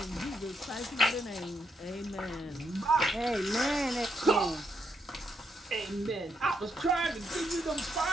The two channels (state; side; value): normal; both; correlation 0.78